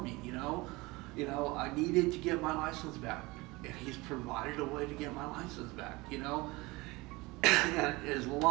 me. I needed to get my license back, and he's provided a way to get my license back. And as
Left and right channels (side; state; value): left; quieter; 22.9 dB